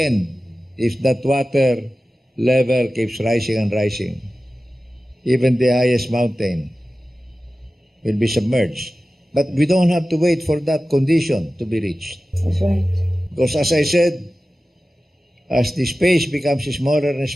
if that water level keeps rising and rising, even the highest mountain will be submerged. But we don't have to wait for that condition to be reached. That's right. Because as I said, as the space becomes smaller and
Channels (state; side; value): normal; both; correlation 0.95